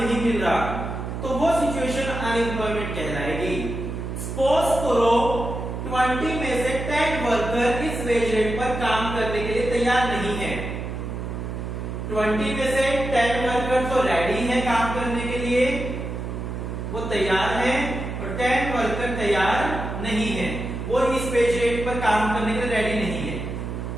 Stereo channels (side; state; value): right; noise; hum, 5 dB below the sound